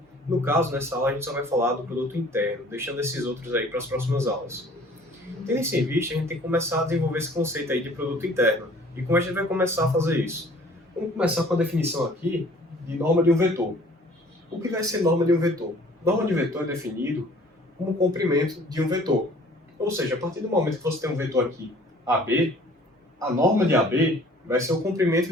No caso, nessa aula a gente só vai falar do produto interno, deixando esses outros aí para as próximas aulas. Tendo isso em vista, a gente tem que começar a desenvolver esse conceito aí de produto interno. E como a gente vai começar a fazer isso? Vamos começar com a definição aqui de norma de um vetor. O que vai ser norma de um vetor? Norma de vetor é definido como comprimento de um vetor. Ou seja, a partir do momento que você tem um vetor aqui, AB, a norma de AB vai ser o comprimento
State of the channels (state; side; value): normal; both; correlation 0.53